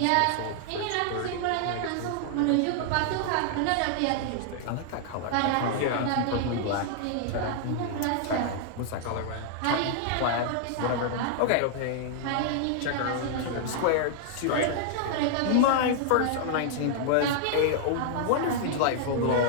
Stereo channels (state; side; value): different; both; correlation -0.01